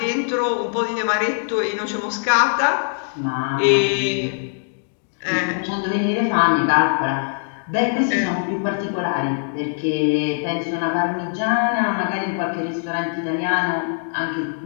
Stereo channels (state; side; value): silent; right; digital silence